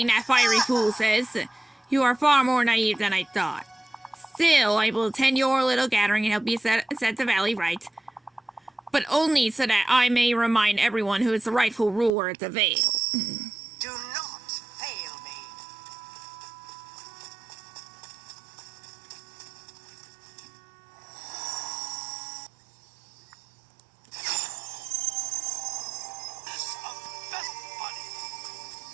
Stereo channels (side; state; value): left; drops out; at 12.1 s